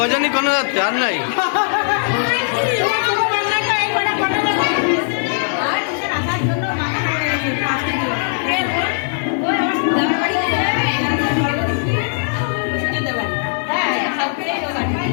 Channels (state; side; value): silent; right; digital silence